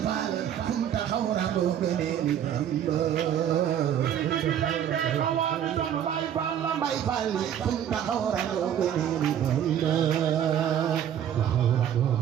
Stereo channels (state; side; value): quieter; left; 9.8 dB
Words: Fall funta xawra bo gene ni bay fali funta xawra bo gene ni